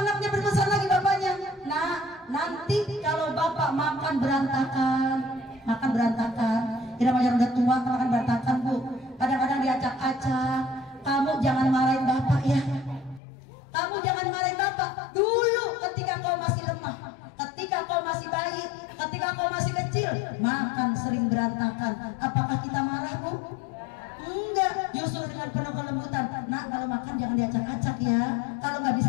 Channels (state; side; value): drops out; right; at 13.2 s